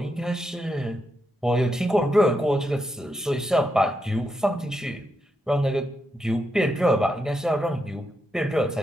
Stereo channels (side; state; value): both; normal; correlation 0.83